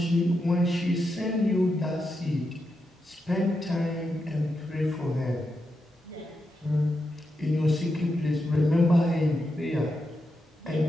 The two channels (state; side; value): normal; both; correlation 0.86